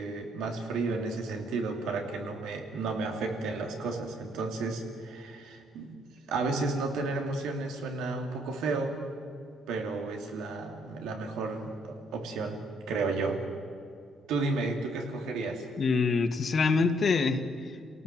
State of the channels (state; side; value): normal; both; correlation 0.68